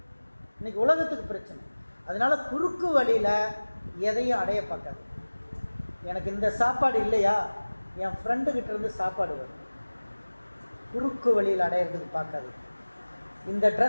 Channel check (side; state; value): both; inverted; correlation -1.00